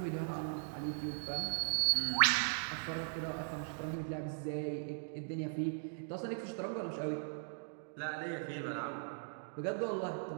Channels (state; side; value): silent; left; digital silence